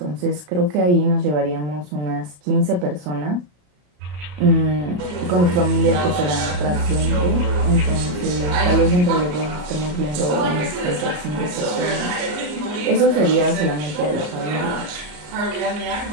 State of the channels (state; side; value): late; left; 34 ms